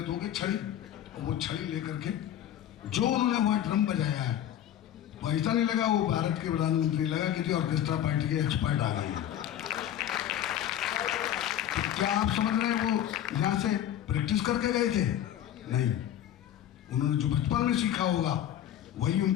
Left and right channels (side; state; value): right; quieter; 11.1 dB